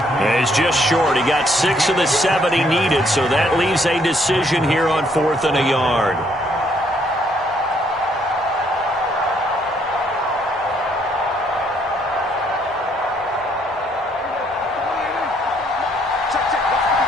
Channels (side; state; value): both; normal; correlation 0.68